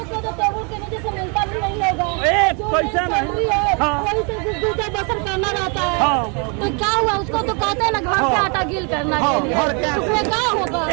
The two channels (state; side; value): quieter; left; 35.1 dB